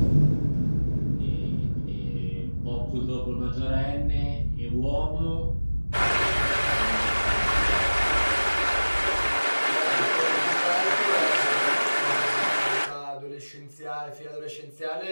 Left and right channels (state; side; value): inverted; both; correlation -1.00